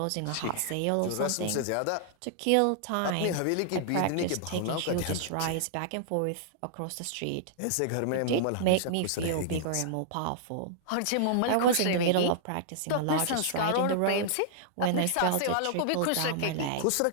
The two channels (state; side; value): different; both; correlation -0.01